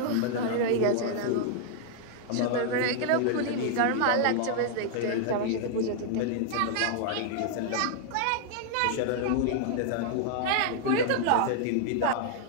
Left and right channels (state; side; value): different; both; correlation -0.01